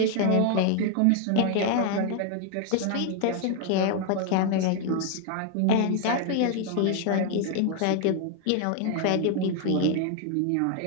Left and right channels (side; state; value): both; different; correlation 0.00